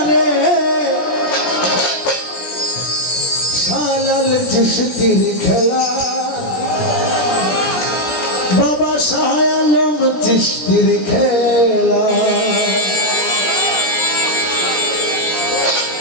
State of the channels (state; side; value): late; right; 17 ms